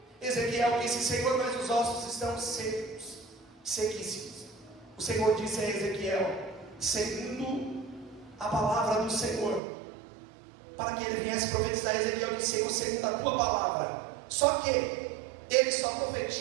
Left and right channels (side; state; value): left; drops out; at 9.6 s